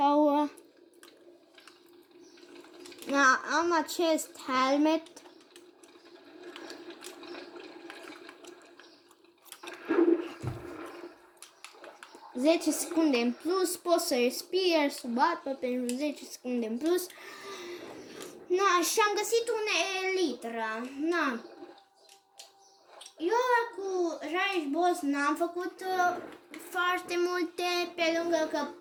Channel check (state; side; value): identical; both; correlation 1.00